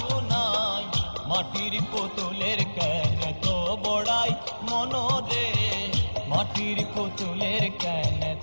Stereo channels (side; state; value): both; inverted; correlation -1.00